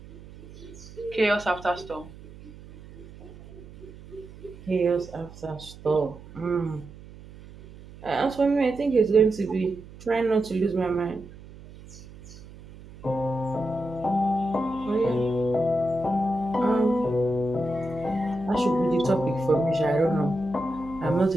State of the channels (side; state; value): right; noise; hum, 18 dB below the sound